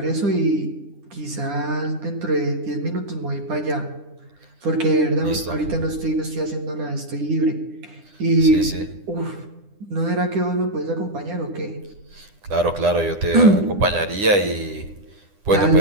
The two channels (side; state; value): left; late; 10 ms